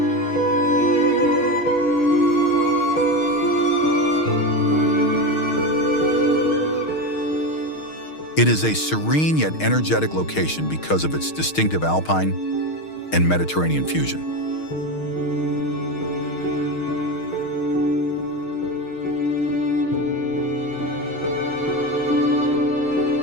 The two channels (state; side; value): late; right; 6.4 ms